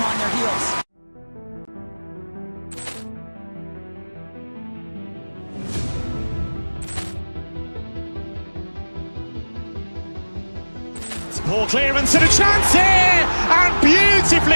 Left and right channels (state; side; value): inverted; both; correlation -1.00